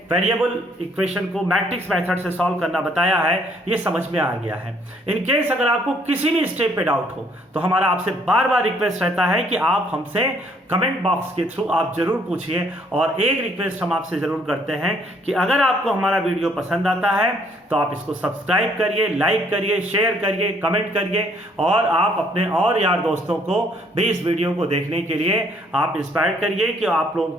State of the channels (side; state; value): both; normal; correlation 0.64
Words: वेरिएबल इक्वेशन को मैट्रिक्स मेथड से सॉल्व करना बताया है ये समझ में आ गया है। इन केस अगर आपको किसी भी स्टेप पे डाउट हो तो हमारा आपसे बार बार रिक्वेस्ट रहता है कि आप हमसे कमेंट बॉक्स के थ्रू आप जरूर पूछिए। और एक रिक्वेस्ट हम आपसे जरूर करते हैं कि अगर आपको हमारा वीडियो पसंद आता है तो आप इसको सब्सक्राइब करिए, लाइक करिए, शेयर करिए, कमेंट करिए और आप अपने और यार दोस्तों को भी इस वीडियो को देखने के लिए आप इंस्पायर करिए कि आप